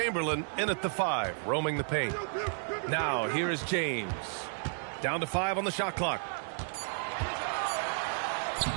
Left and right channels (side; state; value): left; silent; 56 dB below the other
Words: in at the 5, roaming the paint. Now here is James. Down to 5 on the shot clock.